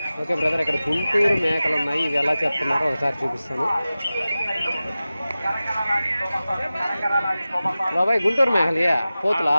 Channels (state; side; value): inverted; both; correlation -0.96